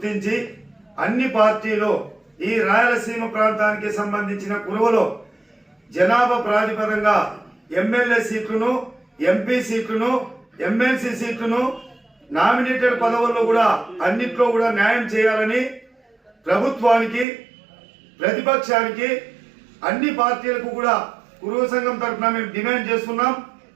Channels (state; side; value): drops out; left; at 17.2 s